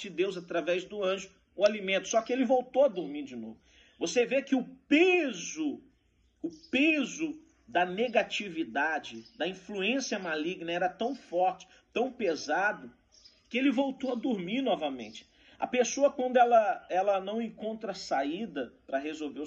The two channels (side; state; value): both; identical; correlation 1.00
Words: de Deus, através do anjo, o alimento, só que ele voltou a dormir de novo. Você vê que o peso da negatividade, da influência maligna era tão forte, tão pesado, que ele voltou a dormir novamente. A pessoa, quando ela não encontra saída para resolver